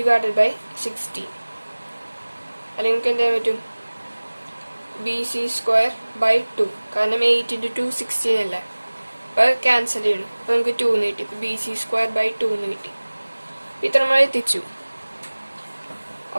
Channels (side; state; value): both; inverted; correlation -1.00